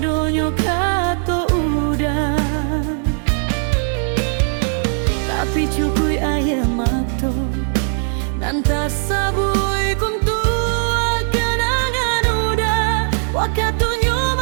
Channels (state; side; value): silent; left; 56 dB below the other